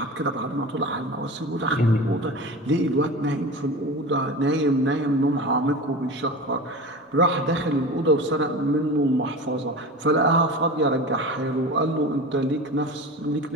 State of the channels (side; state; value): both; normal; correlation 0.31